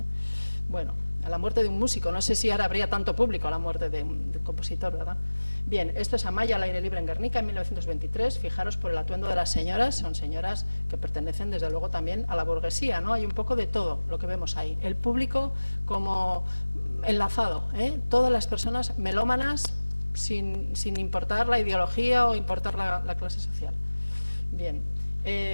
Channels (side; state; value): both; inverted; correlation -1.00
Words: Bueno, a la muerte de un músico, no sé si ahora habría tanto público a la muerte de un compositor, ¿verdad? Bien, esto es Amaya al aire libre en Guernica en 1923. Fijaros por el atuendo de las señoras, son señoras que pertenecen desde luego también a la burguesía, ¿no? Hay un poco de todo lo que vemos ahí. El público como enlazado, todas las personas melómanas sin importar la ideología o importar la clase social. Bien,